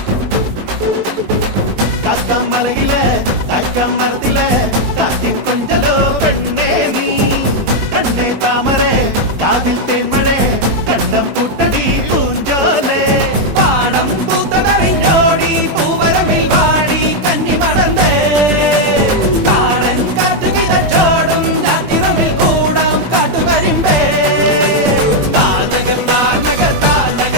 മലകിലെ തക്കം മരത്തിലെ കാറ്റിൻ കൊഞ്ചലോ പെണ്ണേ നീ കണ്ണേ താമരേ കാതിൽ തേന്മഴേ കണ്ടം പൂട്ടടി പൂഞ്ചോലേ പാടം പൂത്തതറിഞ്ഞോടി പൂവരമ്പിൽ വാടി കന്നി മണന്തേ കാടൻ കാറ്റു കിതച്ചോടും ഞാറ്റിറമ്പിൽ കൂടാം കാട്ടുകരിമ്പേ താനകർ താനകർ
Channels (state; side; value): late; left; 21 ms